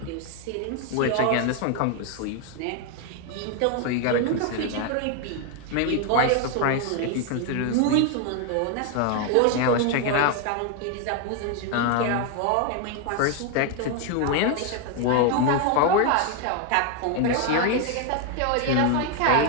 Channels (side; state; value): both; different; correlation 0.01